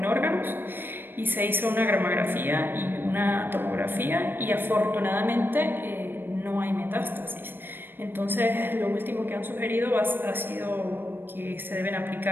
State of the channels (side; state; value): left; late; 0.097 ms